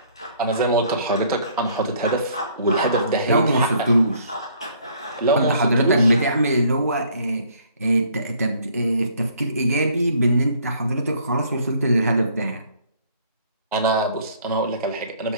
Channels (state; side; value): inverted; both; correlation -0.61